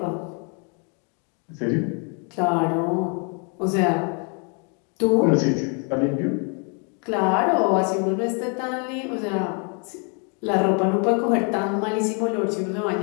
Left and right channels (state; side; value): quieter; right; 37.9 dB